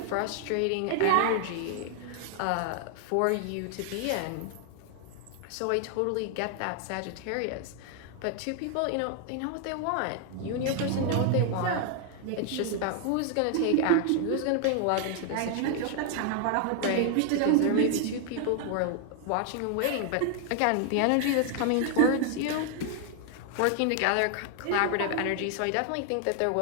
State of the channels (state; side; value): different; both; correlation 0.00